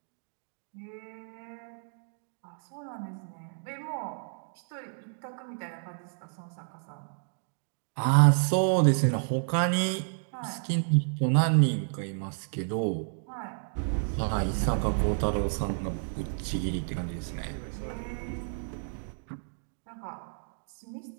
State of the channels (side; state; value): left; silent; digital silence